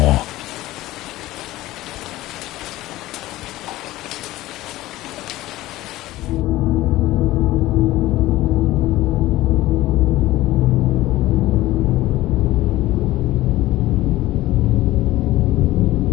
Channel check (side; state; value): right; quieter; 16.8 dB